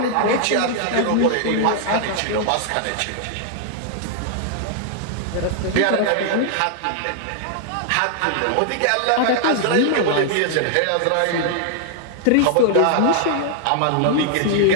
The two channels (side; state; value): both; different; correlation -0.01